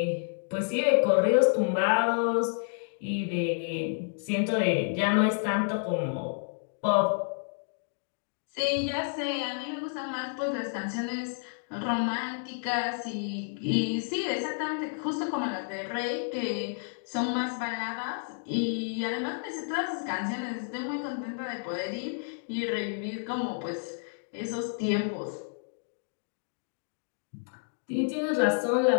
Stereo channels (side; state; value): right; silent; digital silence